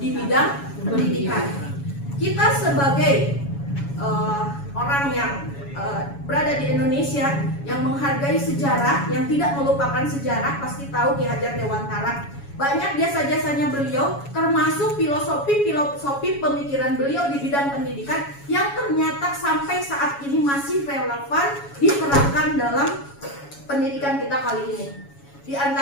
bidang pendidikan. Kita sebagai orang yang berada di Indonesia yang menghargai sejarah, yang tidak melupakan sejarah, pasti tahu Ki Hajar Dewantara. Banyak jasa-jasanya beliau, termasuk filosofi pemikiran beliau di bidang pendidikan yang ternyata sampai saat ini masih relevan diterapkan dalam pendidikan kita kali ini. Di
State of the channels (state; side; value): late; right; 7.2 ms